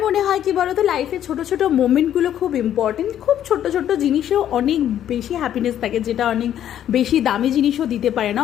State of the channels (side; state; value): right; quieter; 10.7 dB